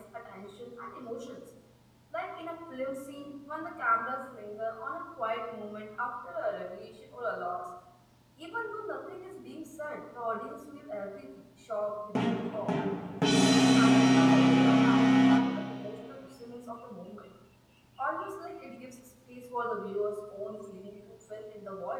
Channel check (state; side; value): identical; both; correlation 1.00